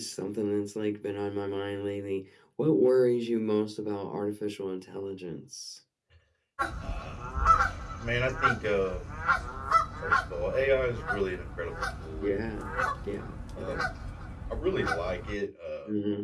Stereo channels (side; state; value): both; identical; correlation 1.00